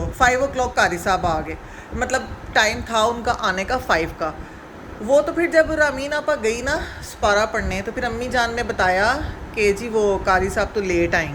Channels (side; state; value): both; identical; correlation 1.00